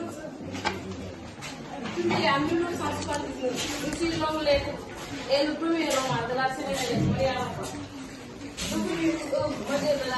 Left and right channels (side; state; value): both; identical; correlation 1.00